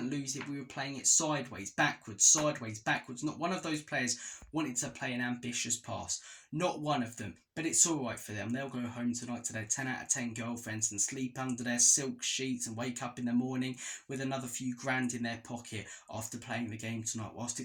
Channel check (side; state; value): both; identical; correlation 1.00